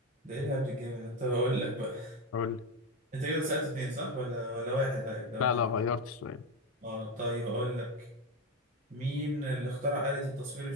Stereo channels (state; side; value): normal; both; correlation 0.14